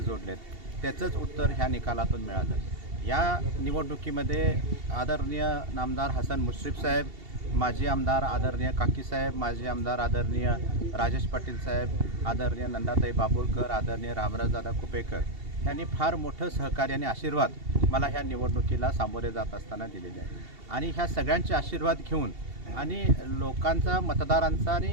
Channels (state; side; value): late; left; 2.7 ms